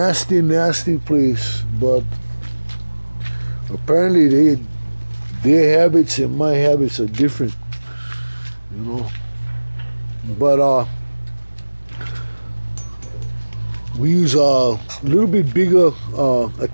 place, but apparently their habits and my habits are different, you know. But we use a little bit bigger. I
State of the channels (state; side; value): inverted; both; correlation -1.00